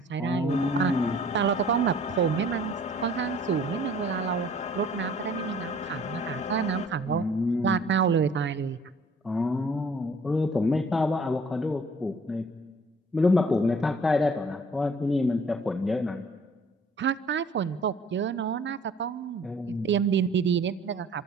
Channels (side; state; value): both; normal; correlation 0.54